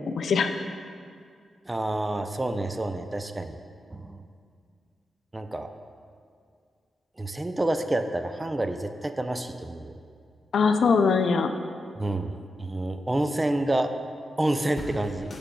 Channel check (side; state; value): both; normal; correlation 0.87